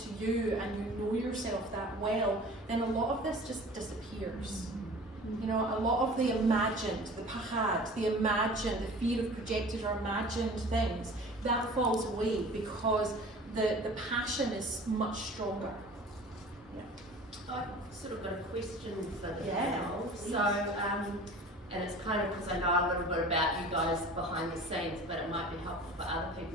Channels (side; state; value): both; normal; correlation 0.42